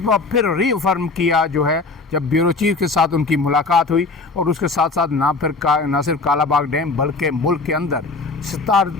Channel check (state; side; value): quieter; right; 3.7 dB